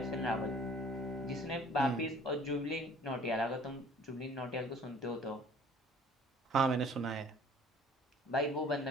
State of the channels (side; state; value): both; normal; correlation 0.51